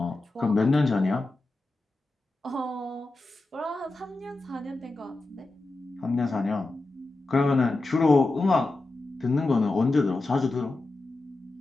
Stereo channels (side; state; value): right; quieter; 3.1 dB